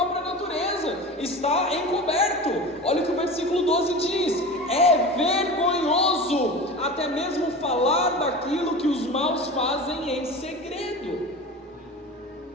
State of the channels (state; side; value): normal; both; correlation 0.32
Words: natureza, está encoberto. Olha o que o versículo 12 diz: é vergonhoso até mesmo falar daquilo que os maus fazem em segredo.